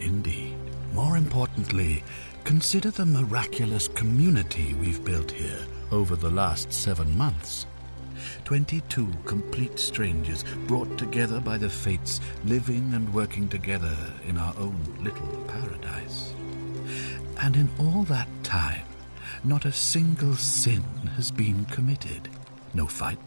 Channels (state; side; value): inverted; both; correlation -1.00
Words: More importantly, consider the miraculous community we've built here over the last 7 months. 22 complete strangers brought together by the fates, living and working together in our own little paradise. And in all that time, not a single sin has been committed. No